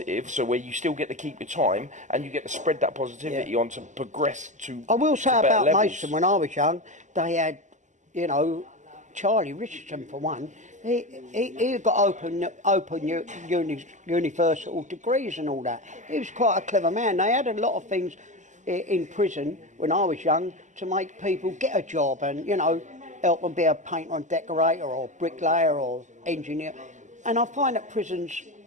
so where you still get to keep your time and you get to spread that positivity on to progress to. I will say to better about levels. Mason, when I was young, they had, you know, Charlie Richardson for one. He got open universal degrees and all that. He was quite a clever man. They had a lot of things in prison when I was young to make people get a job and, you know, help them be a painter and decorator or bricklayer or engineer. And I find that prisons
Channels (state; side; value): late; left; 0.35 ms